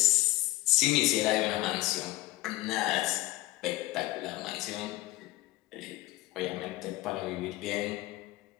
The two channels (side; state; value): right; quieter; 18.0 dB